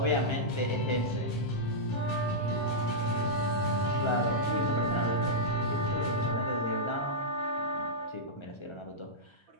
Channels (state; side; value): late; right; 1.3 ms